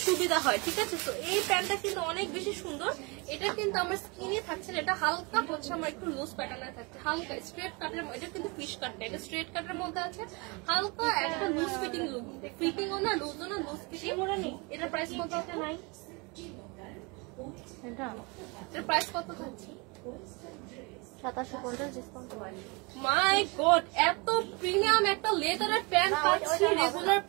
সুবিধা হয়, ঠিক আছে? তো এই প্যান্টটা কিন্তু অনেক বেশি সুন্দর। এটা কিন্তু আমার স্কিনে থাকছে না, এটা হালকা হচ্ছে আমার একটু লুজ প্যাটার্নে থাকছে, হালকা স্ট্রেট কাটের। এটা কিন্তু ফিশ কাট না, এটা স্ট্রেট কাটের মধ্যে আছে, হালকা একটা লুজ ফিটিং লুক, ফিটিংও না লুজও না, লুজ ফিটিং। এটার প্রাইস কত আছে নাই? এটার প্রাইস কত থাকছে? 2750 ডিসকাউন্ট। মাই গড, এত প্রিমিয়াম একটা লেদারের প্যান্ট পাচ্ছি রেগুলার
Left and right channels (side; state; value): left; quieter; 28.9 dB